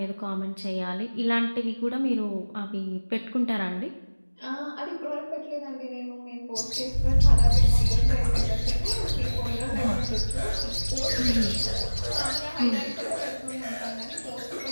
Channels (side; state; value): both; inverted; correlation -1.00